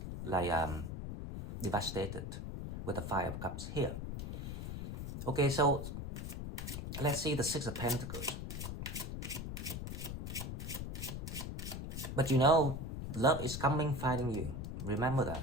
like devastated with the Five of Cups here. Okay, so let's see the Six of Pentacles. But you know, love is coming, finding you. Remember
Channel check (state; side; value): noise; left; rumble, 5 dB below the sound